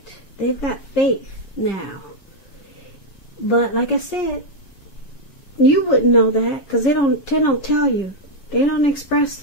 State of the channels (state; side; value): late; right; 7.2 ms